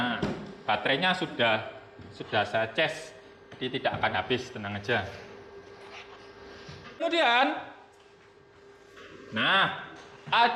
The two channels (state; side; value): identical; both; correlation 1.00